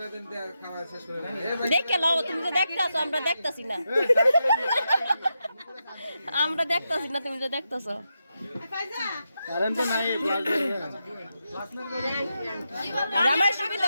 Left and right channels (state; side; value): inverted; both; correlation -0.86